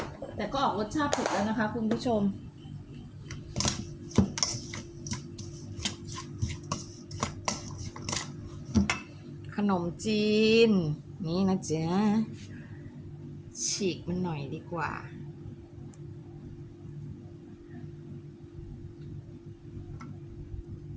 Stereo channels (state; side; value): identical; both; correlation 1.00